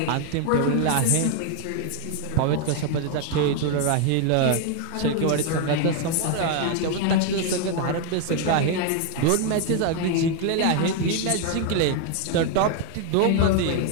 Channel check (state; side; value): different; both; correlation 0.01